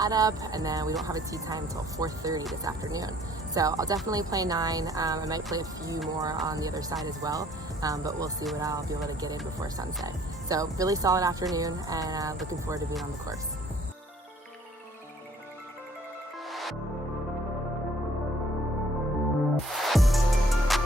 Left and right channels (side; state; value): both; normal; correlation 0.58